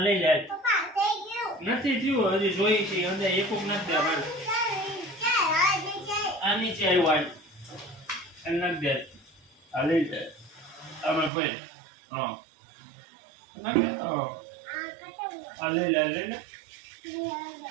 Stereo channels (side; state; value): left; drops out; at 11.3 s